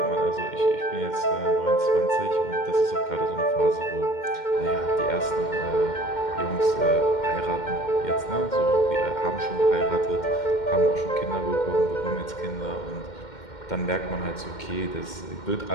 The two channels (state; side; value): late; right; 2.1 ms